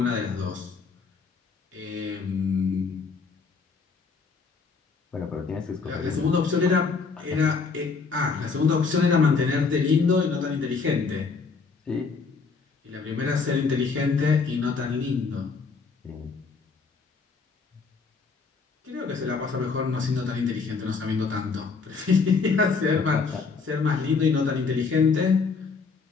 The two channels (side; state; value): right; quieter; 4.8 dB